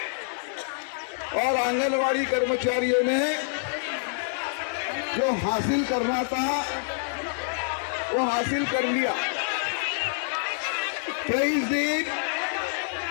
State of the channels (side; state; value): right; silent; digital silence